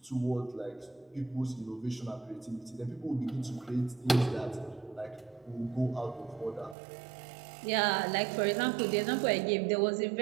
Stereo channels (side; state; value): left; drops out; at 6.8 s